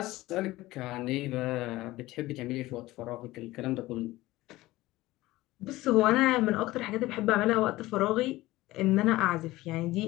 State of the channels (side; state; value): right; quieter; 18.0 dB